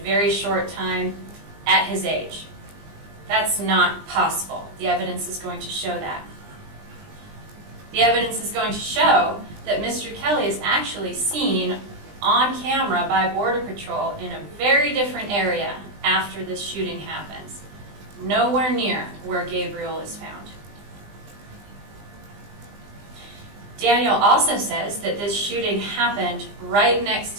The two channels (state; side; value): late; left; 20 ms